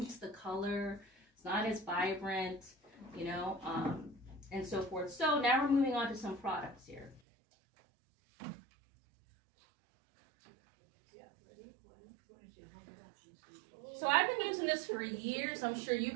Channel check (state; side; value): drops out; left; at 7.2 s